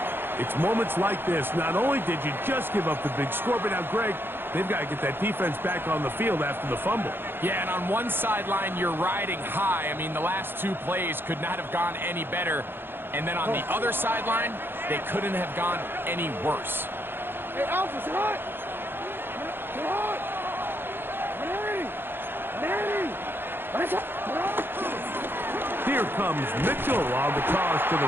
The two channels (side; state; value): left; late; 0.10 ms